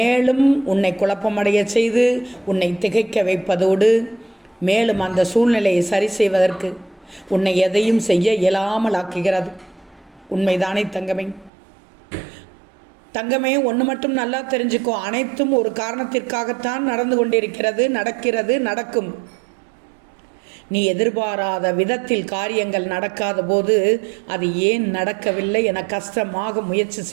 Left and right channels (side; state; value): left; drops out; at 11.5 s